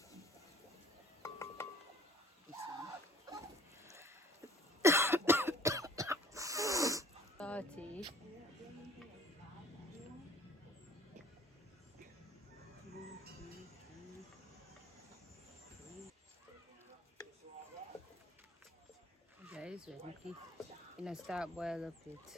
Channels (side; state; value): both; normal; correlation 0.52